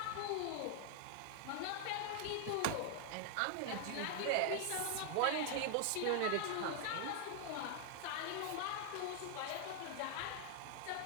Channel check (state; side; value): different; both; correlation 0.00